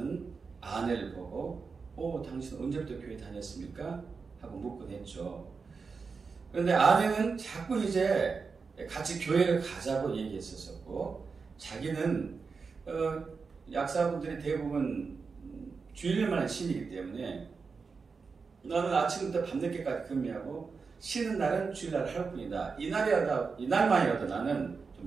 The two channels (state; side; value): quieter; left; 5.0 dB